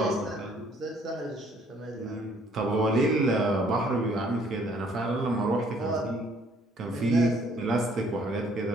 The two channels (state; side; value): normal; both; correlation 0.62